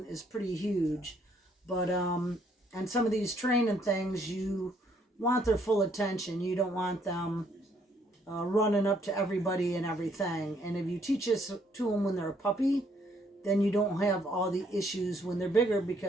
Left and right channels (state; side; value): normal; both; correlation 0.68